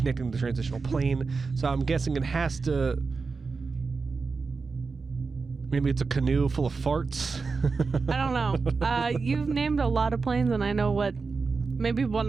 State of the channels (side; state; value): left; quieter; 4.5 dB